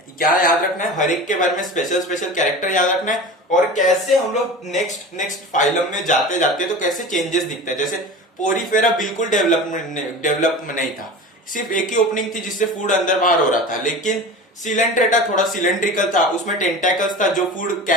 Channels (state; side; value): normal; both; correlation 0.33